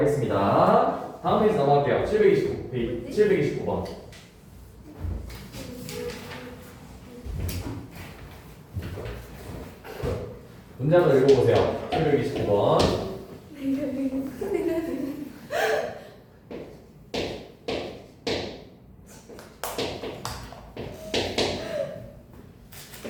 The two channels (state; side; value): identical; both; correlation 1.00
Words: 다음 페이지 넘어갈게요. 729번. 문제 한번 읽어보세요. 729번.